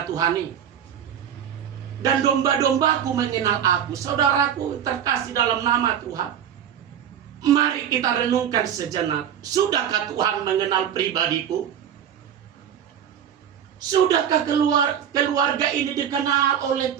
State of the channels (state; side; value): quieter; left; 9.2 dB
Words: Tuhani. Dan domba-dombaku mengenal aku. Saudaraku terkasih dalam nama Tuhan, mari kita renungkan sejenak. Sudahkah Tuhan mengenal pribadiku? Sudahkah keluarga ini dikenal oleh